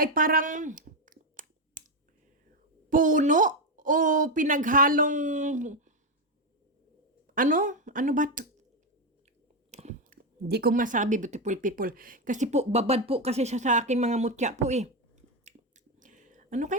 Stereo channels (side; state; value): both; normal; correlation 0.08